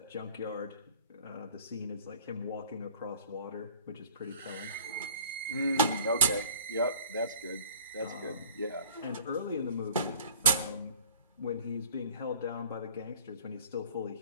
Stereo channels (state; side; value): inverted; both; correlation -0.48